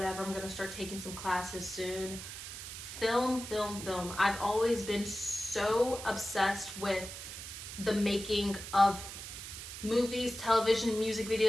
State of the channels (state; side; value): noise; right; hiss, 10 dB below the sound